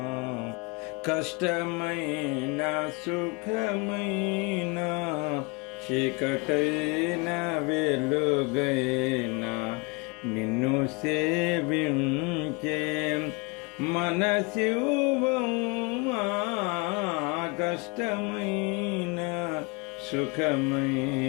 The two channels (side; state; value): right; quieter; 28.8 dB